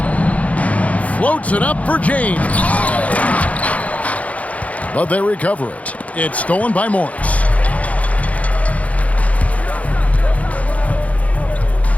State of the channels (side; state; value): right; late; 0.068 ms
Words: Floats it up for James. But they recover it. It's stolen by Morris.